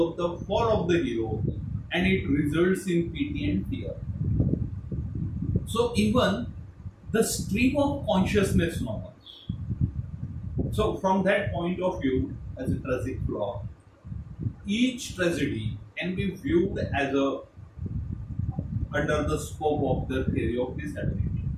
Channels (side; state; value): both; identical; correlation 1.00